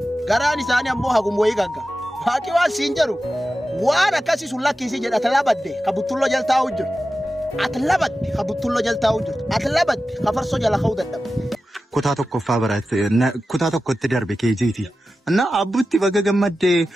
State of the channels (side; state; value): both; normal; correlation 0.93